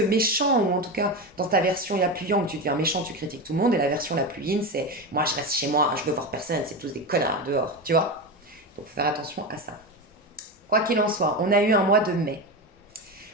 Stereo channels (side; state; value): both; normal; correlation 0.19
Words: ou en tout cas dans ta version la plus yang, tu deviens méchant, tu critiques tout le monde, et la version la plus yin, c'est moi je reste chez moi, je veux voir personne, c'est tous des connards dehors, tu vois. Donc faut faire attention à ça. Quoi qu'il en soit, on a eu un mois de mai.